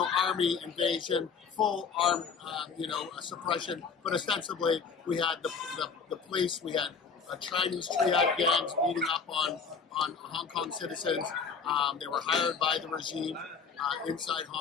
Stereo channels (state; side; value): quieter; right; 5.7 dB